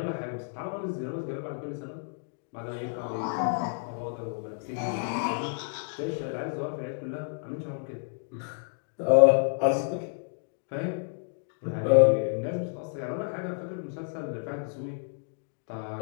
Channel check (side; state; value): right; silent; digital silence